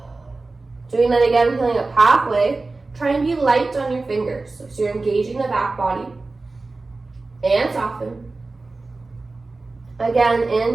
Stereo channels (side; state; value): left; quieter; 3.5 dB